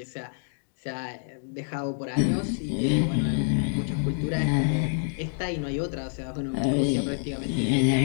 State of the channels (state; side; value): silent; right; digital silence